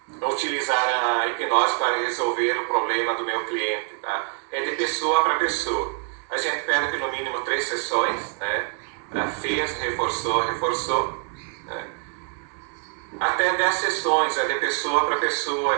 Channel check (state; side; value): quieter; left; 39.3 dB